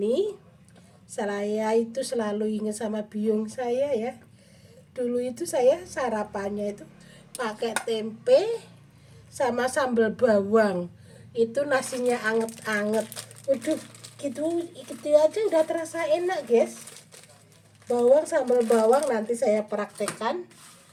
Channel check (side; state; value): both; identical; correlation 1.00